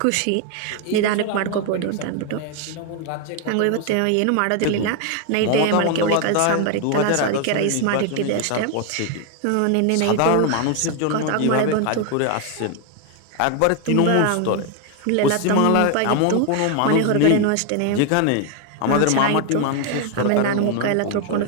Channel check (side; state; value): both; different; correlation 0.01